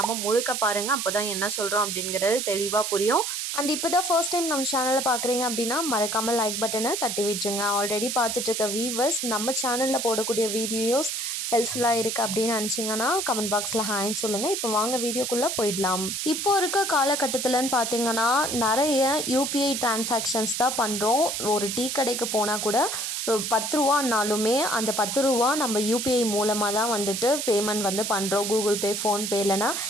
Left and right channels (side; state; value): right; noise; hiss, 3 dB below the sound